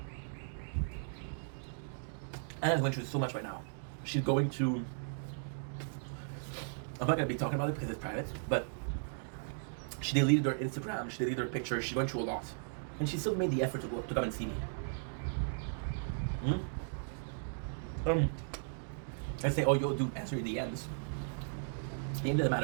Anna's going through so much right now. She's going to, I'm not going to be talking about it because it's private, but she deleted her Instagram, she deleted her pictures, she's going through a lot. And she still made the effort to come and see me. I say, oh, yo, dude, answer your DMs. It doesn't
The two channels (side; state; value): left; silent; digital silence